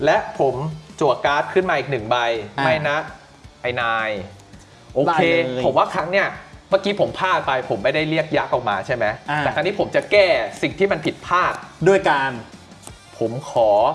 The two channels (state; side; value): identical; both; correlation 1.00